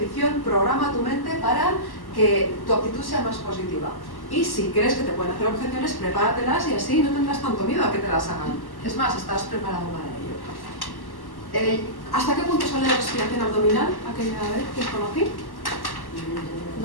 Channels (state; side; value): late; right; 1.1 ms